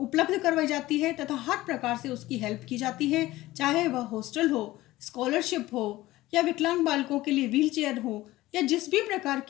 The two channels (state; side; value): quieter; right; 17.3 dB